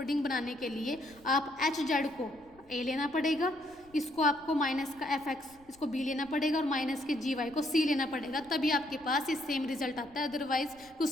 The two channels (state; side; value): noise; left; rumble, 28 dB below the sound